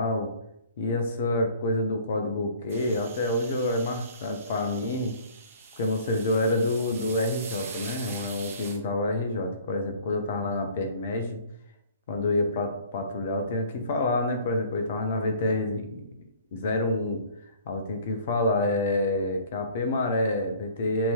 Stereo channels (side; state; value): both; inverted; correlation -0.51